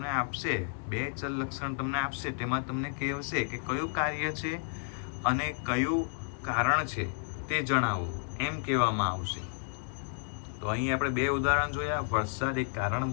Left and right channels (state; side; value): silent; right; digital silence